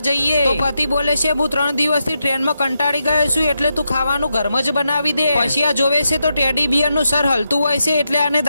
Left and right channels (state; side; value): inverted; both; correlation -0.85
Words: જઈએ। તો પતિ બોલે છે હું 3 દિવસથી ટ્રેનમાં કંટાળી ગયો છું એટલે તું ખાવાનું ઘરમાં જ બનાવી દે। પછી આ જોવે છે તો ટેડી બિયર નું સર હલતું હોય છે એટલે આને